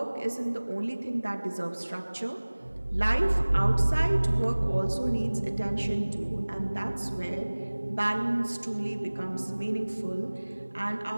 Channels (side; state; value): both; inverted; correlation -1.00